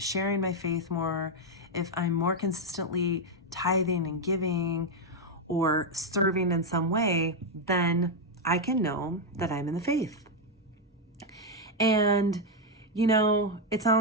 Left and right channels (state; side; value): normal; both; correlation 0.02